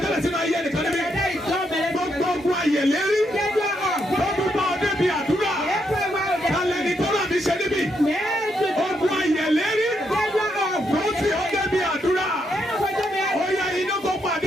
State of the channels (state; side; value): normal; both; correlation 0.78